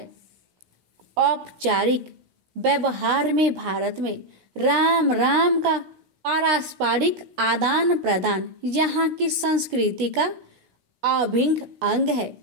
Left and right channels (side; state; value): left; late; 16 ms